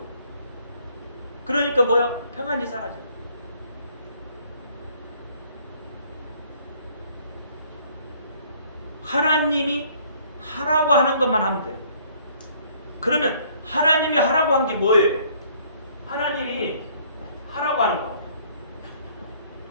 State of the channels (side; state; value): both; inverted; correlation -0.60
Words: 그러니까 뭐야? 평안이 사라져요. 하나님이 하라고 하는 것만 하면 돼요. 그러면 하나님이 하라고 한 게 뭐예요? 하나님이 하라고 하는 거,